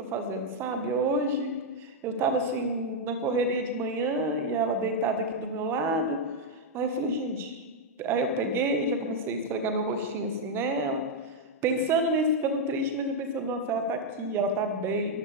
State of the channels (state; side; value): normal; both; correlation -0.02